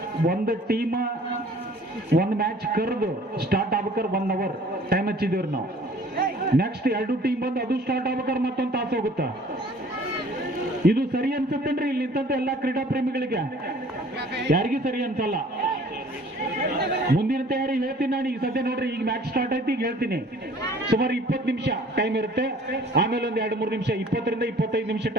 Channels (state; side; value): normal; both; correlation 0.52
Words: ಒಂದು ಟೀಮ್ ಒಂದು ಮ್ಯಾಚ್ ಕರೆದು ಸ್ಟಾರ್ಟ್ ಆಗ್ಬೇಕಾದ್ರೆ 1 ಅವರ್ ಟೈಮ್ ಹಚ್ಚಿದೇವ್ರಿ ನಾವು. ನೆಕ್ಸ್ಟ್ 2 ಟೀಮ್ ಬಂದು ಅದು ಸ್ಟಾರ್ಟ್ ಆಗ್ಬೇಕಾದ್ರೆ ಮತ್ತೊಂದು ತಾಸು ಹೋಗುತ್ತ. ಇದು ಸರಿ ಅನ್ಸುತ್ತೇನ್ರಿ ಇಲ್ಲಿ ನಿಂತಂತ ಎಲ್ಲಾ ಕ್ರೀಡಾ ಪ್ರೇಮಿಗಳಿಗೆ? ಯಾರಿಗೂ ಸರಿ ಅನ್ಸಲ್ಲ. ಮುಂದಿನ ತಯಾರಿ ಹೇಳ್ತೀನಿ ನಾನು. ಈಗ ಸದ್ಯ ನೋಡ್ರಿ, ಈಗ ಮ್ಯಾಚ್ ಸ್ಟಾರ್ಟ್ ಆಯ್ತು, ಈಗ ಹೇಳ್ತೀನಿ. ಸುಮಾರು 20 ನಿಮಿಷ ಟೈಮ್ ಇರುತ್ತೆ. ಆಮೇಲೆ ಒಂದು 2-3 ನಿಮಿಷ, 20 ರಿಂದ 25 ನಿಮಿಷ